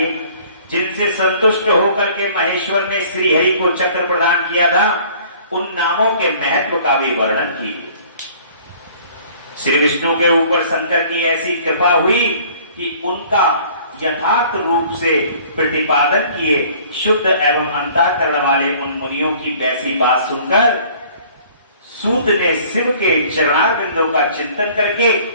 जिनसे संतुष्ट होकर के महेश्वर ने श्री हरि को चक्र प्रदान किया था, उन नामों के महत्व का भी वर्णन कीजिए। श्री विष्णु के ऊपर शंकर की ऐसी कृपा हुई कि उनका यथार्थ रूप से प्रतिपादन किए शुद्ध एवं अंतःकरण वाले उन मुनियों की वैसी बात सुनकर सूत ने शिव के चरणारविंदों का चिंतन करके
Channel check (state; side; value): inverted; both; correlation -0.53